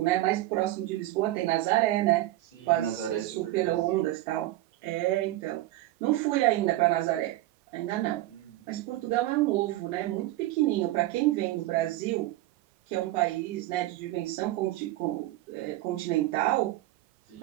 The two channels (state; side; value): quieter; left; 16.3 dB